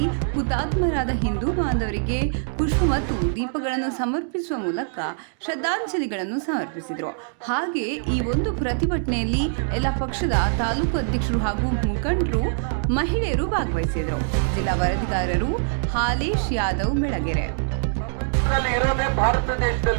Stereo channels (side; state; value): left; silent; digital silence